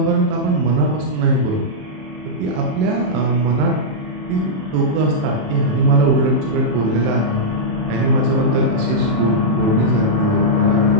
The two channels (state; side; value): late; left; 27 ms